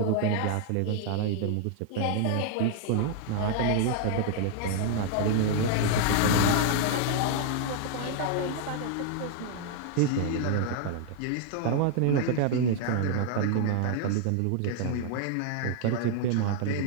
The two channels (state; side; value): different; both; correlation 0.00